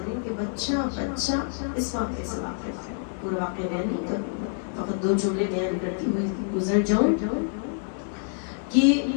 کے بچہ اس واقعے سے واقف ہے. پورا واقعہ بیان نہیں کروں، فقط 2 جملے بیان کرتی ہوئی گزر جاؤں کہ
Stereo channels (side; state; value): right; silent; 60 dB below the other